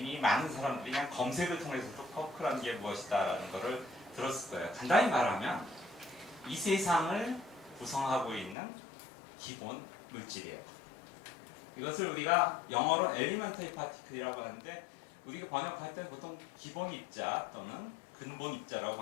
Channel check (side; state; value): right; drops out; at 8.6 s